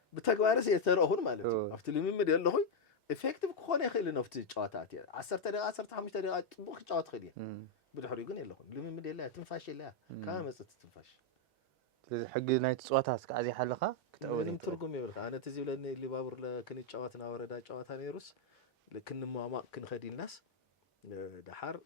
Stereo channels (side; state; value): both; normal; correlation 0.00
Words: بتجوارس يترأهون مالتي أفتلي من مدي الله خوي effective كخوني خيل نفتي جواتاتي 10 دقيقة 15 دقيقة طبخ جوات خيليه بدحر يقول يلا خون لمن مدي الله تنفاش الله كام مصت تنفاش حق نايت صوتها كعزي حلقه ምንም ትርጉም ይብልካ አነ ተዚህ ብለን ሊባቡር ለክን ጫዋትና ወረዳ ጫዋታ ነይሩስ ለክን ማማቅ ክን ኸዲናስ ደሐር